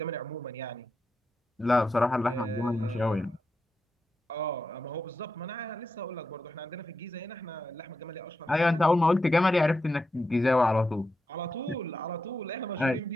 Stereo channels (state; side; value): normal; both; correlation 0.86